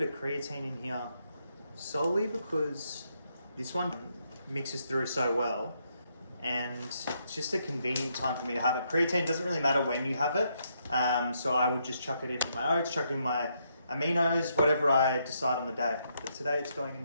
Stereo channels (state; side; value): inverted; both; correlation -0.77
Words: of creatine in here, solely because this one mixes through so well, and it's just a convenient time for me to have it. Creatine doesn't really matter when you have it, so I would just chuck it in with my oats, chuck it in my aminos, whatever I decide on the day. But today it's going in